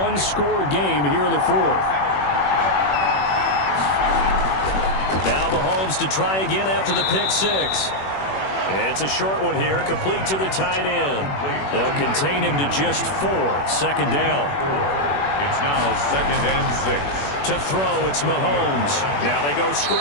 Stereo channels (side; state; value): right; late; 21 ms